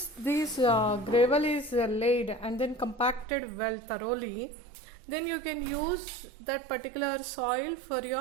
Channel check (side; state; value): left; drops out; at 3.2 s